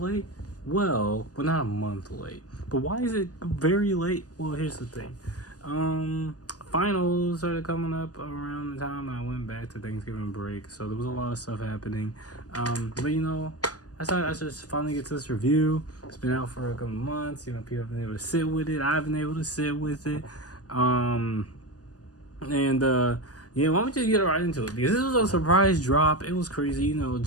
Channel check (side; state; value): right; late; 0.67 ms